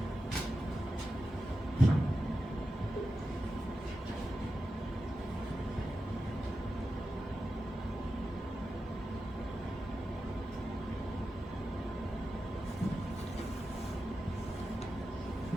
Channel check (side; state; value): both; normal; correlation 0.91